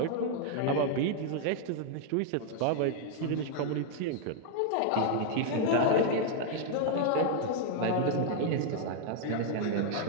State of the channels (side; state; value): both; different; correlation 0.00